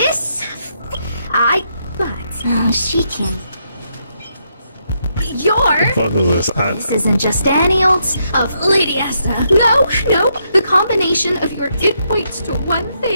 she can... This isn't just any old... Of Lady Asta. No. The combination of it points to one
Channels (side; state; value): both; inverted; correlation -0.78